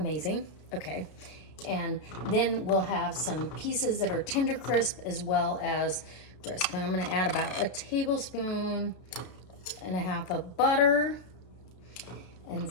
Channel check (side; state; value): right; late; 32 ms